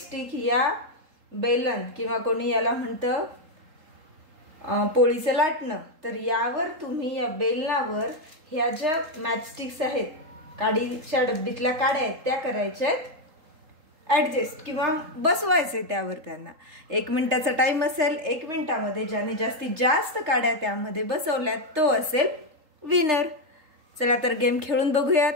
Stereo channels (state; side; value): late; left; 3.8 ms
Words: या बेलन किंवा कोणी याला म्हणतं पोळीचं लाटणं, तर यावर तुम्ही या बेलनावर ह्या ज्या मॅचस्टिक्स आहेत, काडीच्या डब्बीतल्या काड्या आहेत त्या करायच्या ऍडजस्ट किंवा बसवायचे त्यावर। त्यांना 1 मिनिटाचा टाइम असेल। 1 मिनिटामध्ये ज्याने जास्तीत जास्त काड्या त्यामध्ये बसवल्यात तो असेल विनर। चला तर गेम खेळून बघूयात।